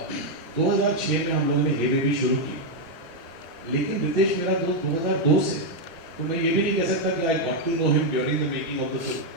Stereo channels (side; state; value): left; late; 1.0 ms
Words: 2006 में हम लोगों ने हे बेबी शुरू की, लेकिन रितेश मेरा दोस्त 2002 से, तो मैं ये भी नहीं कह सकता कि I got to know him during the making of the film.